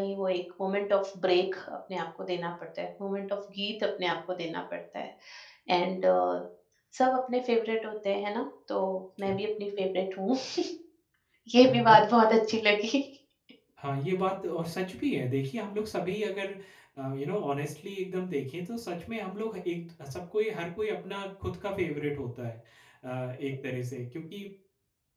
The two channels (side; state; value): both; identical; correlation 1.00